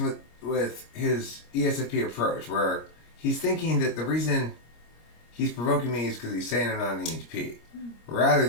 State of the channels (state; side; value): late; right; 25 ms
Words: with his ESFP approach, where he's thinking that the reason he's provoking me is because he's saying I'm not an EHP, rather